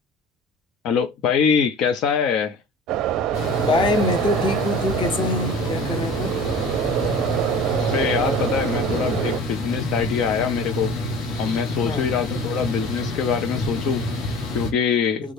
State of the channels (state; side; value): normal; both; correlation 0.39